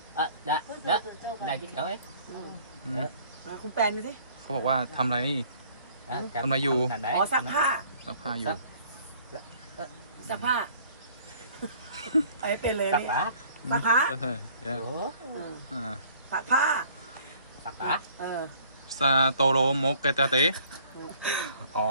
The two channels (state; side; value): inverted; both; correlation -0.56